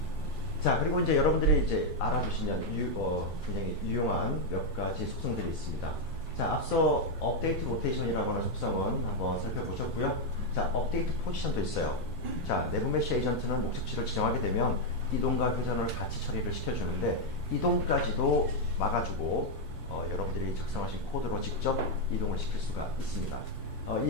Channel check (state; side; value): normal; both; correlation 0.01